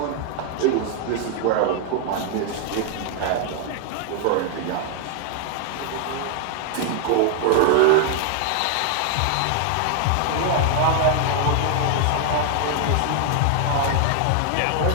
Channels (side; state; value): both; different; correlation 0.00